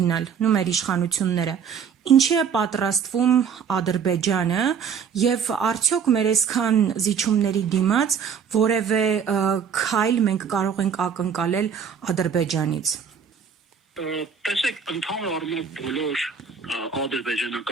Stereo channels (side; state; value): left; quieter; 7.0 dB